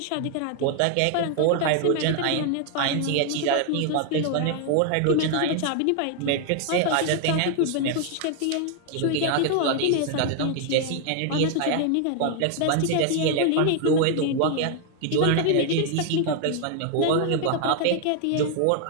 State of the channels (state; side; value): different; both; correlation 0.00